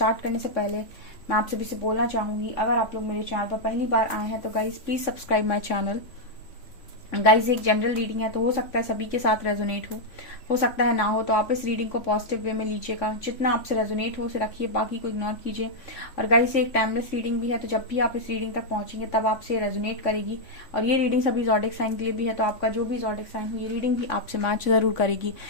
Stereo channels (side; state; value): right; late; 3.5 ms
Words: करने से पहले मैं आप सभी से बोलना चाहूंगी, अगर आप लोग मेरे चैनल पर पहली बार आए हैं तो guys please subscribe my channel. Guys, एक जनरल रीडिंग है तो हो सकता है सभी के साथ रेजोनेट हो सकता है ना हो, तो आप इस रीडिंग को पॉजिटिव वे में लीजिएगा। जितना आपसे रेजोनेट हो उसे रखिए, बाकी को इग्नोर कीजिए। और गाइज, ये एक टाइमलेस रीडिंग भी है, तो जब भी आप इस रीडिंग तक पहुंचेंगे तब आपसे रेजोनेट करेगी। और ये रीडिंग सभी ज़ोडिक साइन के लिए भी है, तो आपका जो भी ज़ोडिक साइन हो ये रीडिंग भी आपसे मैच जरूर करेगी।